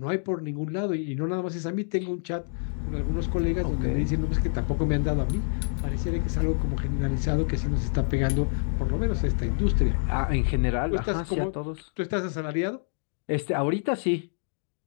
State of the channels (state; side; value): silent; right; digital silence